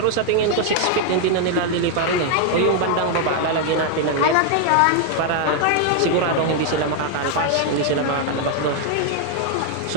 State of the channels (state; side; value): different; both; correlation 0.00